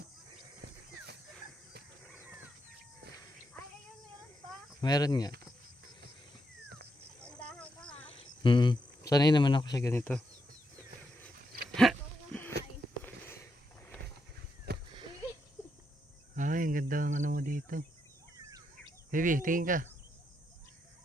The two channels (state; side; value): normal; both; correlation 0.81